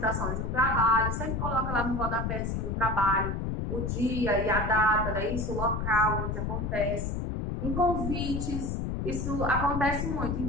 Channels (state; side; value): noise; left; rumble, 2 dB below the sound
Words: de um trabalho, sempre coloca lá no rodapézinho do trabalho o dia e a data, né? Isso, o local onde acontece. Em convites, isso acontece muito.